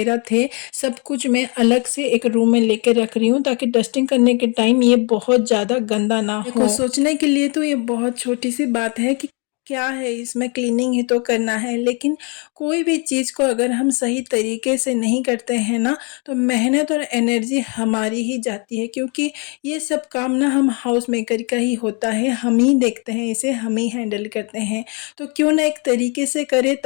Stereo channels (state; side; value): quieter; right; 34.1 dB